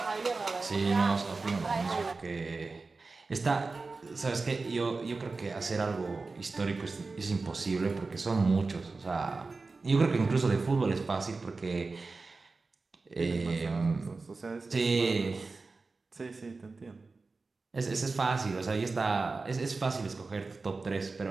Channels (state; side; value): quieter; left; 3.9 dB